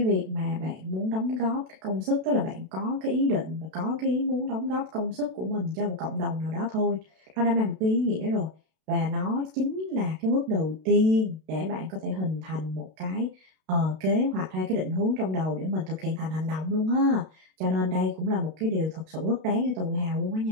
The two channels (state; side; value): late; left; 32 ms